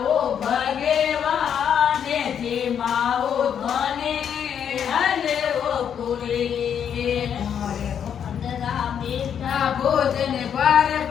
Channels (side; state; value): right; quieter; 8.4 dB